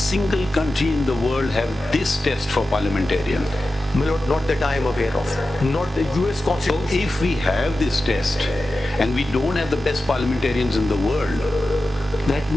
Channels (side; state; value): both; normal; correlation 0.93